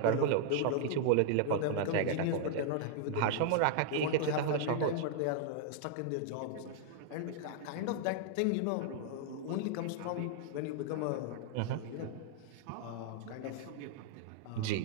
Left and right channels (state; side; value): different; both; correlation -0.01